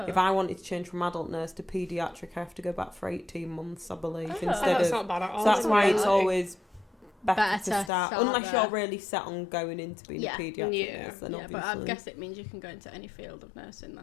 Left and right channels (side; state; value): right; drops out; at 7.9 s